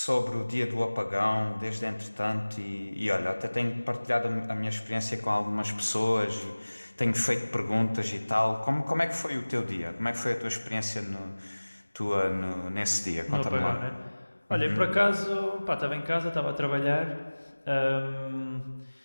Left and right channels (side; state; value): both; inverted; correlation -1.00